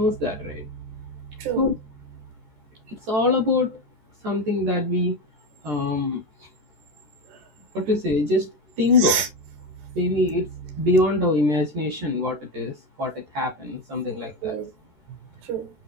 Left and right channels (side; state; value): left; late; 14 ms